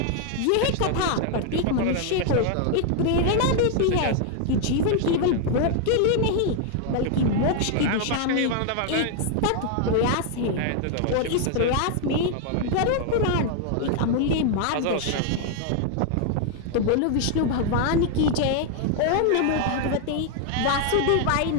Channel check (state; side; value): different; both; correlation 0.00